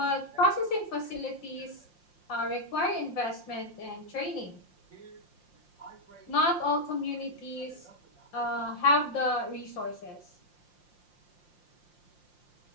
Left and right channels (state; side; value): late; right; 5.7 ms